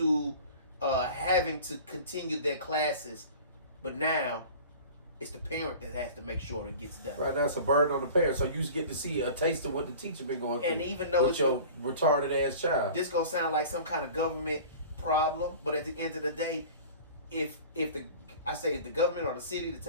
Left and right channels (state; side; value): inverted; both; correlation -0.40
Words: having to continue their classes. But now, it's the parent that has to make sure it gets done. Right, that's a burden on the parent. So you get to see a taste of what the teacher been going through. And even though with your retarded ass child, this gonna sound like some kind of government problem, but at the end of the day, if the government or the city, the